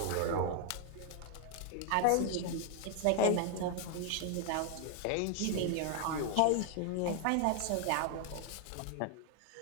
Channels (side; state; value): both; different; correlation 0.00